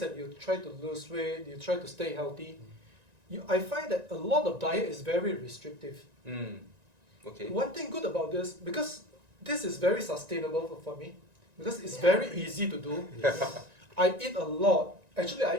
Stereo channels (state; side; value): late; left; 1.9 ms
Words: you try to lose weight, you try to stay healthy, I find that a lot of diet is very restrictive. Okay. One thing good about this, because this is very sustainable for me, because it's very easy to do. I eat a lot. Actually,